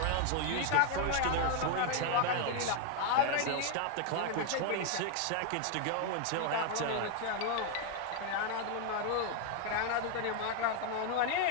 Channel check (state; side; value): different; both; correlation 0.01